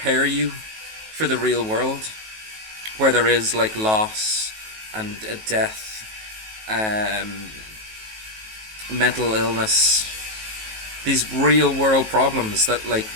you for the real world, where there is like loss and death, mental illness, these real world problems that like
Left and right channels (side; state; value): left; late; 19 ms